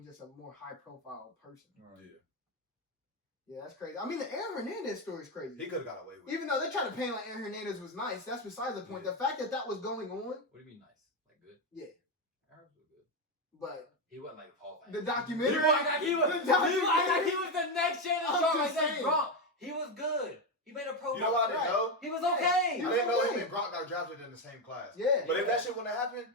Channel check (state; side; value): normal; both; correlation 0.09